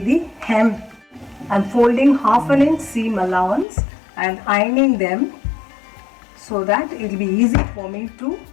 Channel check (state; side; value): drops out; right; at 3.7 s